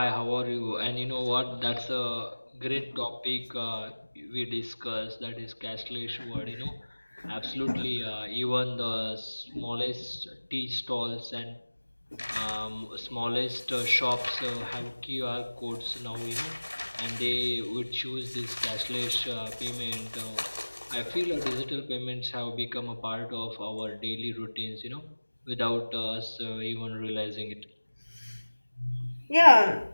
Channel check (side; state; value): both; inverted; correlation -1.00